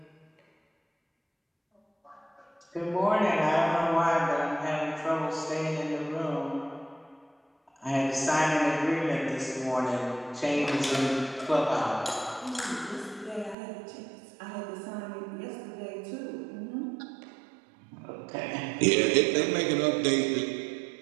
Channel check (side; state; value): left; drops out; at 13.6 s